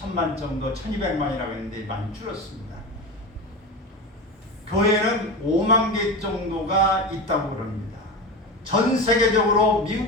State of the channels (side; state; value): both; normal; correlation 0.24